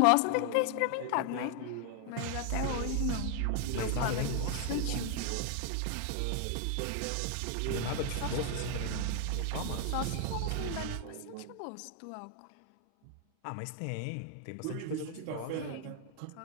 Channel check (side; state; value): both; different; correlation 0.00